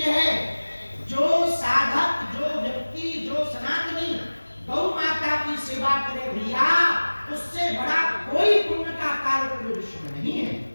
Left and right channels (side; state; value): both; inverted; correlation -1.00